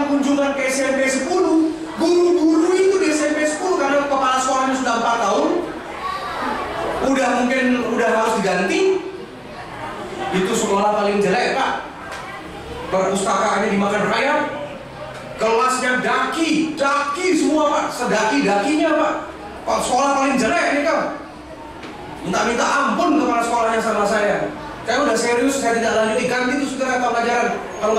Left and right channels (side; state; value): both; identical; correlation 1.00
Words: kunjungan ke SMP 10, guru-guru itu di SMP 10 karena kepala sekolahnya sudah 4 tahun, udah harus diganti. Itu sekolah paling jelek Pak. Perpustakaannya dimakan rakyat, kelasnya daki semua Pak, sedaki-dakinya Pak. Sekolah paling jelek nih Kang. Minta ampun kepala sekolahnya sama saya. Saya udah serius, saya tidak lanjuti, ganti itu segera pelajaran kalau